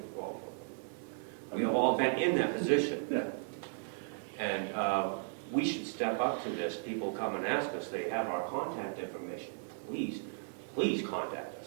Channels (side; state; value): left; silent; 54 dB below the other